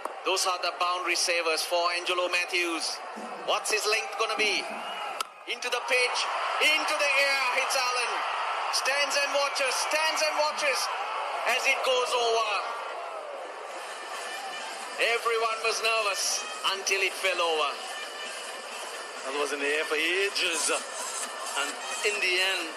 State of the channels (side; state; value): both; identical; correlation 1.00